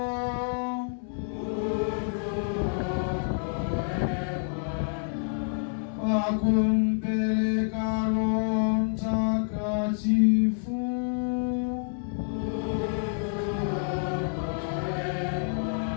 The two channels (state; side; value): silent; right; digital silence